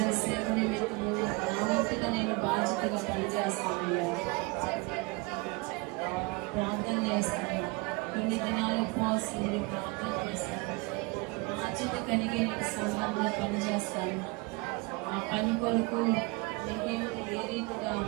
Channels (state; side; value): quieter; left; 26.8 dB